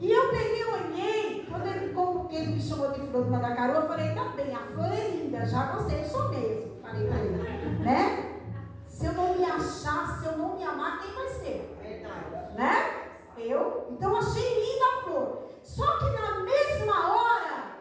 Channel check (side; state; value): both; identical; correlation 1.00